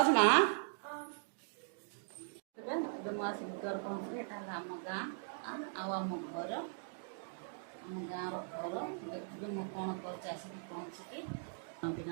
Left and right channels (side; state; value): left; silent; digital silence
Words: ना मुझे घर पहुँचली एटा आम गाँ आम घर आम गाँव घर देखिए मुझे कौन कर पहुँचिकी भी